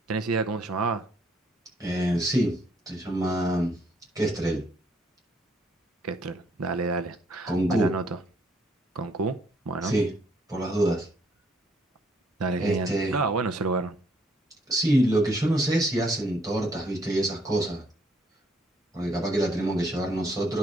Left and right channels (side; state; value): both; normal; correlation 0.68